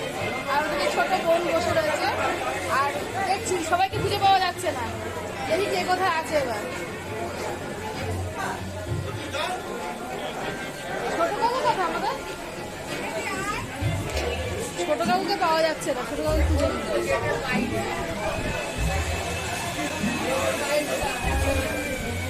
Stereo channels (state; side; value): identical; both; correlation 1.00